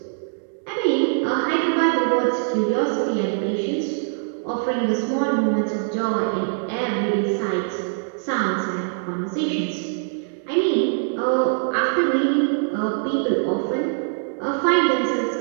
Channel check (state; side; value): silent; left; digital silence